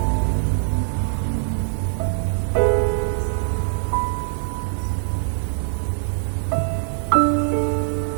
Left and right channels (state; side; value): silent; left; digital silence